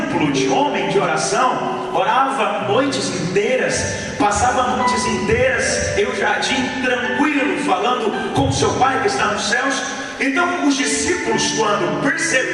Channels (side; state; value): both; identical; correlation 1.00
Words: de homem de oração. Orava noites inteiras, passava noites inteiras em um jardim tranquilo, falando com seu Pai que está nos céus. Então os discípulos, quando